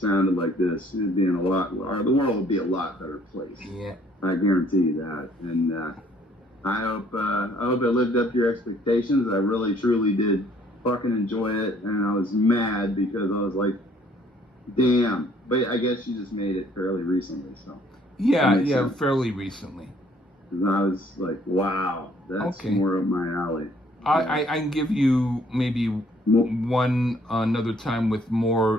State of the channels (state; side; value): normal; both; correlation 0.61